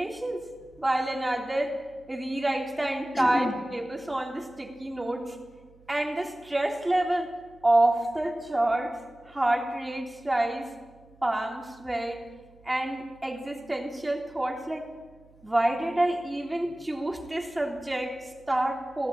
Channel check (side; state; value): right; noise; hum, 27 dB below the sound